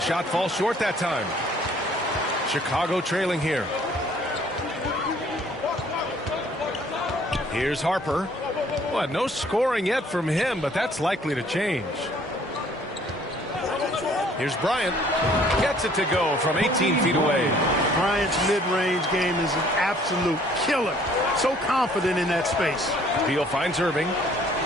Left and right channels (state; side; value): normal; both; correlation 0.58